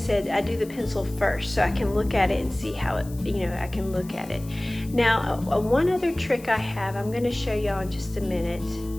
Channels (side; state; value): left; noise; hiss, 20 dB below the sound